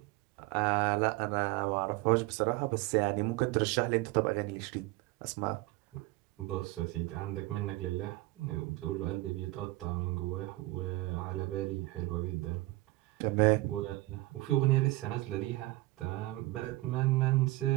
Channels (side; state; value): left; quieter; 20.0 dB